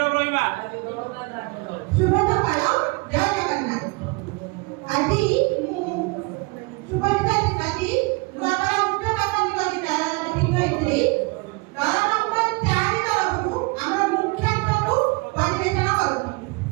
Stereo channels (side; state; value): left; quieter; 27.3 dB